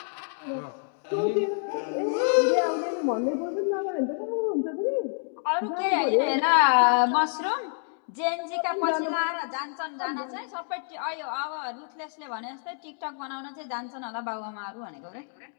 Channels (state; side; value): silent; right; 59 dB below the other